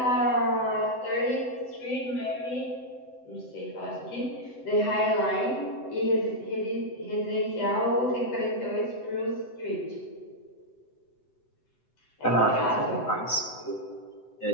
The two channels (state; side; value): late; right; 7.9 ms